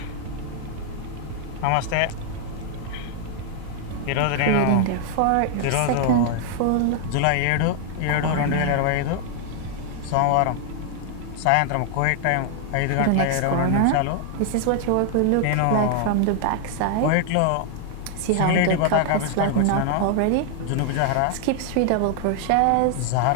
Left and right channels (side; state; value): both; different; correlation 0.00